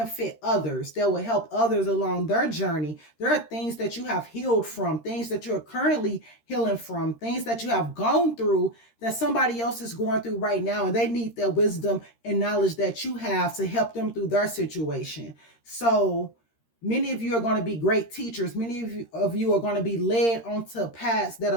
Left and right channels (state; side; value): late; right; 13 ms